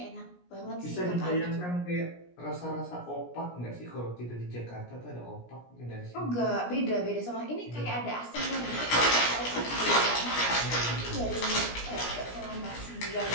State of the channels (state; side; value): late; right; 17 ms